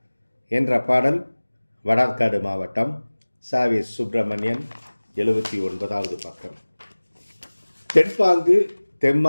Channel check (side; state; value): both; inverted; correlation -1.00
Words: என்ற பாடல் வடார்காடு மாவட்டம், சாவே சுப்பிரமணியன் 79வது பக்கம். தென்பாங்கு